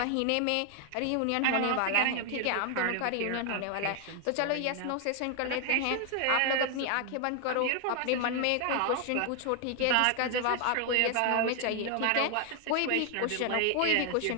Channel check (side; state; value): both; different; correlation 0.00